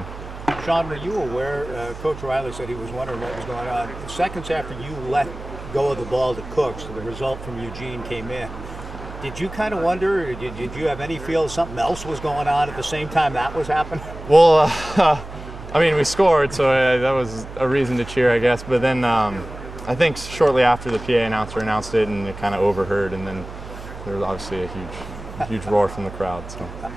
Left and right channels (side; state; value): right; noise; hum, 12 dB below the sound